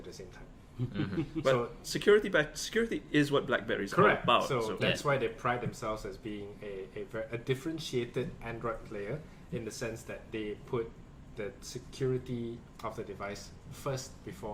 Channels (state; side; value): identical; both; correlation 1.00